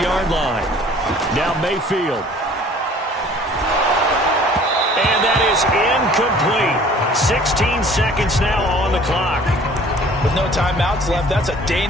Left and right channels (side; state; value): both; normal; correlation 0.51